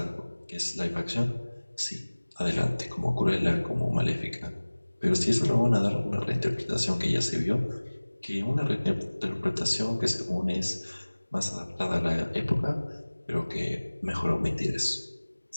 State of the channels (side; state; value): both; inverted; correlation -1.00